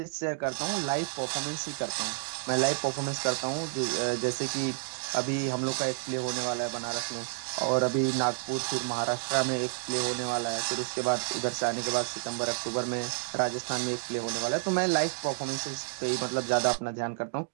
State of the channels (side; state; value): left; silent; digital silence